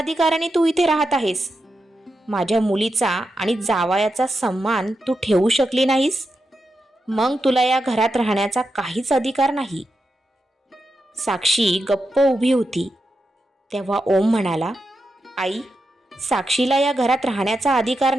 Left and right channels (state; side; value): normal; both; correlation 0.87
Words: तू इथे राहत आहेस? माझ्या मुलीचा आणि जावयाचा सन्मान तू ठेवू शकली नाहीस, मग तुला या घरात राहण्याचा काहीच अधिकार नाही. साक्षी गप्प उभी होती. तेव्हा ओम म्हणाला, आई, साक्षीला या घरात राहण्याचा अधिकार